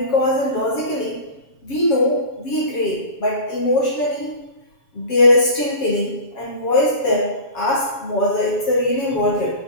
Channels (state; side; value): late; right; 7.3 ms